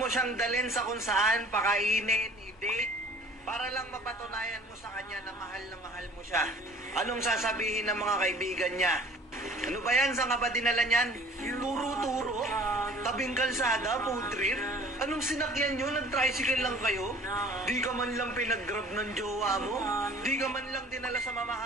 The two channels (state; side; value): normal; both; correlation 0.50